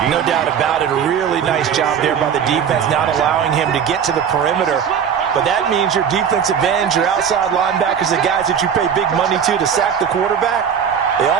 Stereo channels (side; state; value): left; quieter; 7.7 dB